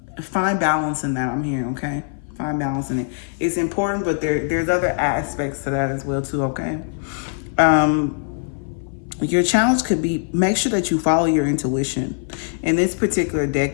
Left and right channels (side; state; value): right; silent; 58 dB below the other